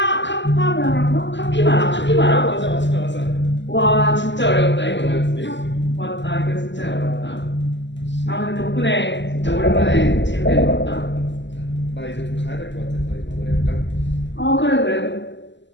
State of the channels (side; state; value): right; late; 0.53 ms